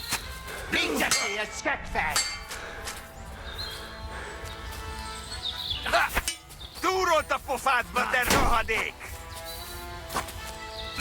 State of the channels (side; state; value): both; identical; correlation 1.00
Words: Mindegyé egy seggfej! Túrolt a pofádba, te rohadék!